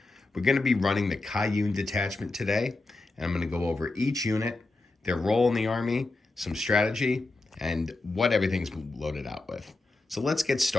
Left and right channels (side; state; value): right; quieter; 3.1 dB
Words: We're going to be running the Kauyon detachment today, and I'm going to go over each unit, their role in the army, some strategy, and what everything's loaded out with. So let's get